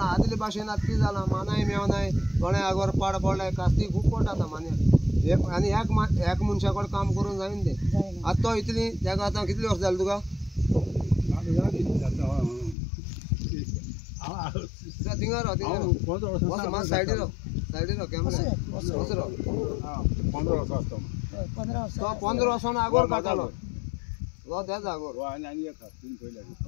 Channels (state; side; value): drops out; right; at 12.8 s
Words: आदले भाशेन आतां कितें जालां, मानाय मेवनाय, कोणें आगोर पाड पडलाय, कास्ती खूब पडटा आतां मान्याक. आनी एक मनशा कडेन काम करून जायना तें जायना. आतां तो इतली तेका आतां कितलीं वर्सां जालीं तुका थिंगा राव सायडीर राव कॅमेरा असो राव 15 वर्सां आसता हय, 15 वर्सां. तो 15 वर्सां आगोर काडटालो तो त्याच आगोर आनी एक तीन पयले